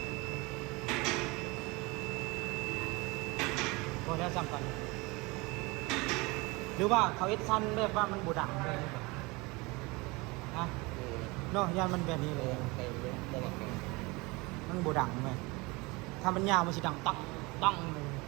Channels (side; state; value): left; quieter; 24.9 dB